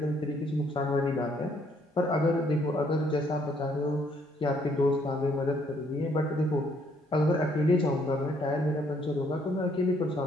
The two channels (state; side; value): normal; both; correlation 0.67